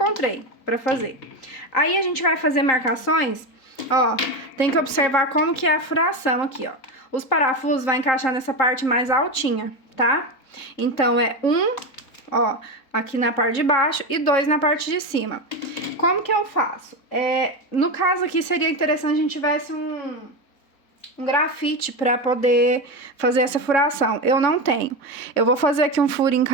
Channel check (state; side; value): late; right; 4.1 ms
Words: pra fazer. Aí a gente vai fazer marcações, ó, tem que observar como que é a furação aqui, ó. Os parafusos vai encaixar nessa parte mais altinha, tá? Então, é ó, aqui na parte de baixo e 2 na parte de cima. Como que eu faço? No caso aqui, seria interessante a gente tivesse um grafite pra poder fazer essa furação. Eu não tenho. Eu vou fazer aqui um furinho com